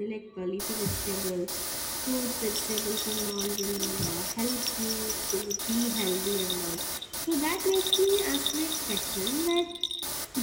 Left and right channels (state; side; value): identical; both; correlation 1.00